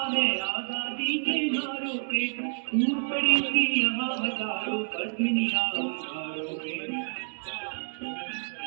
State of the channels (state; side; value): silent; left; digital silence